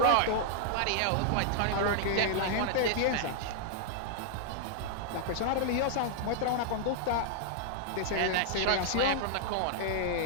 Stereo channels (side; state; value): both; different; correlation -0.01